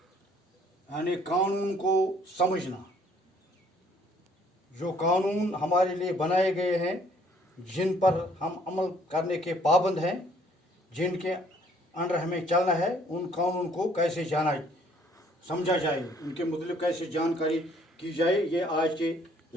यानी कानून को समझना. जो कानून हमारे लिए बनाए गए हैं, जिन पर हम अमल करने के पाबंद हैं, जिनके अंडर हमें चलना है, उन कानून को कैसे समझा जाए, उनके मतलब कैसे जानकारी की जाए, ये आज के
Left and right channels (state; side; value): normal; both; correlation 0.61